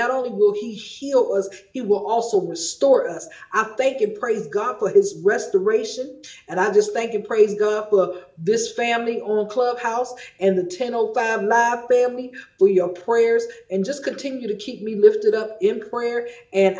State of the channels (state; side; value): identical; both; correlation 1.00